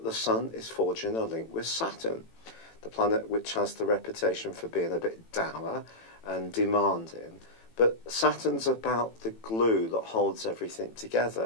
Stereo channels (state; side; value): late; right; 18 ms